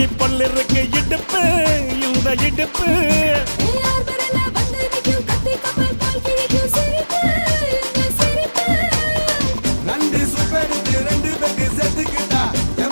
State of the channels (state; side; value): inverted; both; correlation -1.00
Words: பொல்லு இருக்கு இடுப்பு இந்த இடுப்பு ரெண்டு சுப்பெடுத்து ரெண்டு பேருக்கு சேர்த்துக்கிட்டா